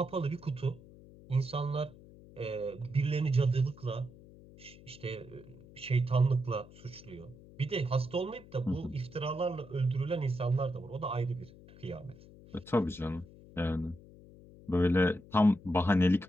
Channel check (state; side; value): noise; left; hum, 21 dB below the sound